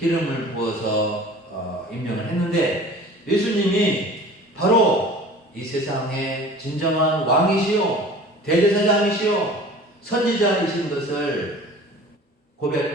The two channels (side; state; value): both; normal; correlation 0.43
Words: 부어서 임명을 했는데 예수님이 바로 이 세상의 진정한 왕이시요 대제사장이시요 선지자이신 것을